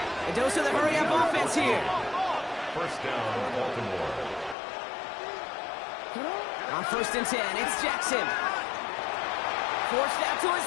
A dose of the hurry-up offense here. 1st down, Baltimore. On 1st and 10, it's Jackson. Forced out to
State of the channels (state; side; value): drops out; right; at 4.5 s